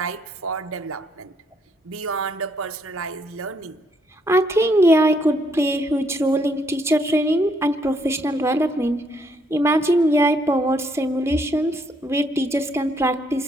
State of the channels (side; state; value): both; normal; correlation 0.71